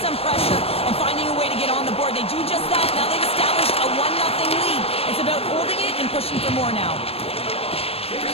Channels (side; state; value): right; late; 0.28 ms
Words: pressure, and finding a way to get on the board. They do just that. Now they've established a 1-0 lead. It's about holding it and pushing for more now.